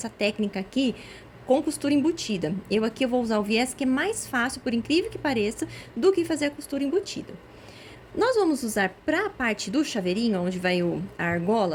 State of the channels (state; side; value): identical; both; correlation 1.00